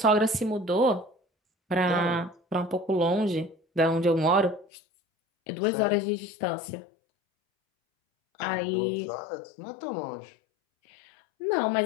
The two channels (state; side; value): drops out; right; at 4.7 s